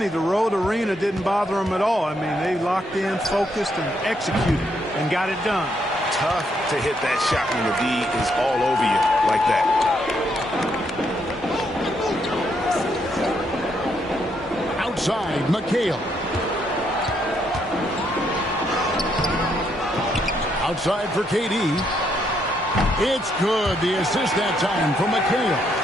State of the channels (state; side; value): normal; both; correlation 0.75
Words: the road arena didn't bother them at all. I mean, they locked in, focused, and executed, and got it done. Tough to hit that shot when the D is all over you like that. Outside, McHale. Outside for KD. It's good. The assist that time from McHale.